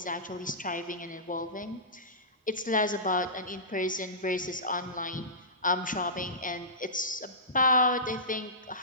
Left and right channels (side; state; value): both; normal; correlation -0.19